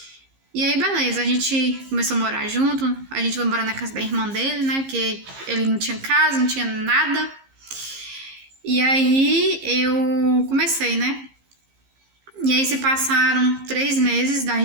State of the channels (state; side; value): late; left; 15 ms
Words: E aí, beleza, a gente começou a morar junto, a gente foi morar na casa da irmã dele, né? Porque ele não tinha casa, não tinha nada. E aí, eu comecei, né? E aí, se passaram 3 meses da